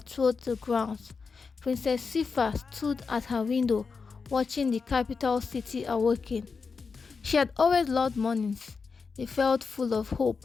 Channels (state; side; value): quieter; right; 5.0 dB